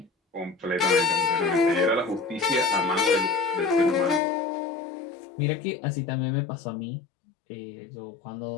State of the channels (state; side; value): drops out; right; at 4.2 s